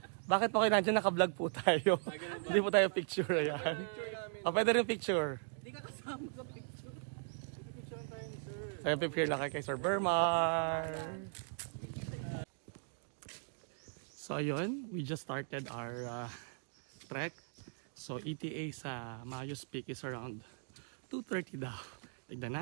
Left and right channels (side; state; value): left; silent; digital silence